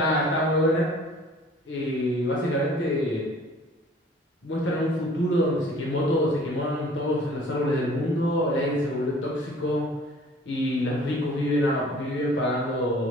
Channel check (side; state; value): both; normal; correlation 0.51